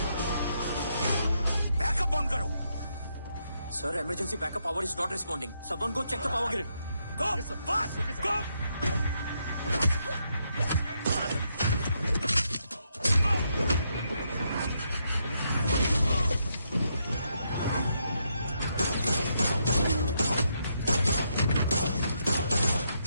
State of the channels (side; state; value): both; inverted; correlation -0.78